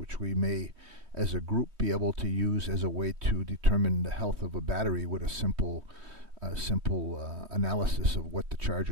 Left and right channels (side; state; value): left; late; 3.2 ms